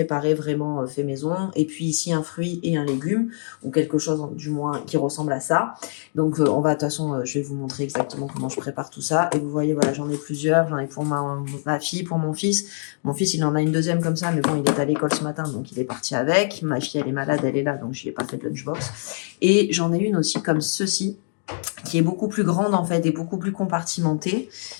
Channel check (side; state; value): right; silent; digital silence